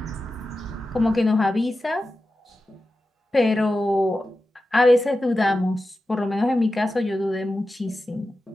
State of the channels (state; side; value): normal; both; correlation 0.92